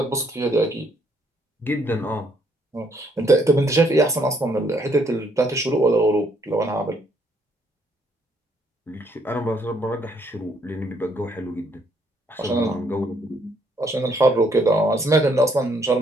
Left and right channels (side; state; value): both; normal; correlation 0.69